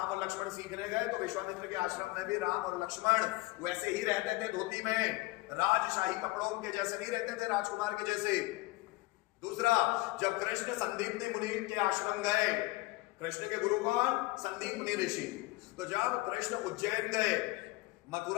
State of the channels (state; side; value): quieter; right; 21.4 dB